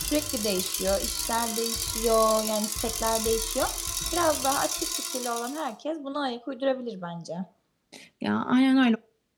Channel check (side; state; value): both; identical; correlation 1.00